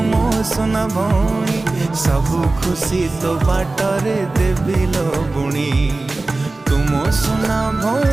सबु खुशी तो बाटरे देवी लो बुणी तुम सुना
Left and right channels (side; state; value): left; quieter; 3.2 dB